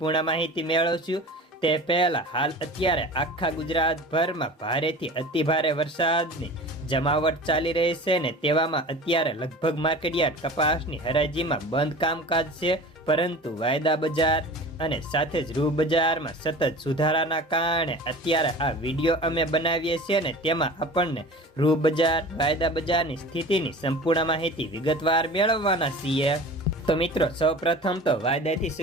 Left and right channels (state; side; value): normal; both; correlation 0.38